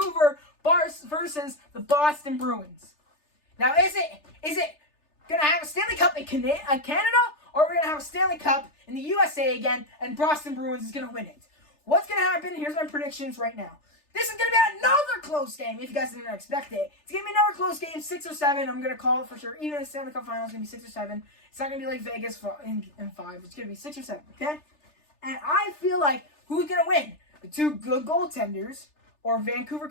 versus the Boston Bruins. Now, is it going to have a Stanley Cup in Canada, or are we going to have a Stanley Cup in the USA again, and Boston Bruins is going to win it? What's going to happen? Here's my predictions right now. This is going to be another close game, if you guys didn't expect it. It's going to be another close game, 6 or 7. I'm going to call it for sure. Even in the Stanley Cup Finals, it's going to be 6 or 7. It's not going to be like Vegas in 5. It's going to be 6 or 7, okay? And I feel like who's going to win? The 2 good goaltenders or Vancouver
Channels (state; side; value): late; right; 3.3 ms